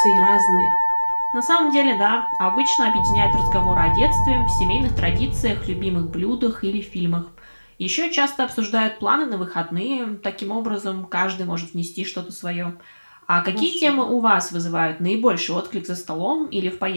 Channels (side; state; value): both; inverted; correlation -1.00